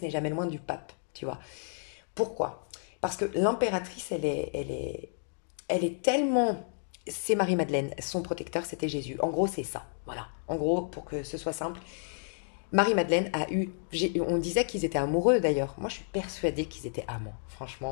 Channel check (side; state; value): right; silent; digital silence